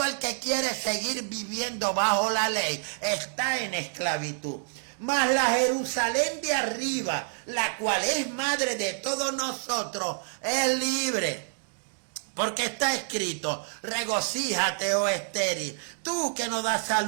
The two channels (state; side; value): silent; left; digital silence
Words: el que quiere seguir viviendo bajo la ley está en esclavitud. Mas la Jerusalén de arriba, la cual es madre de todos nosotros, es libre. Porque está escrito, regocíjate, oh estéril, tú que no das